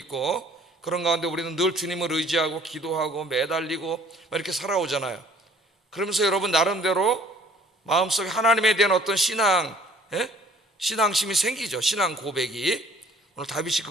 그런 가운데 우리는 늘 주님을 의지하고 기도하고 매달리고 이렇게 살아오잖아요. 그러면서 여러분 나름대로 마음속에 하나님에 대한 어떤 신앙심이 생기죠. 신앙 고백이. 오늘 다윗이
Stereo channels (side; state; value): both; normal; correlation 0.55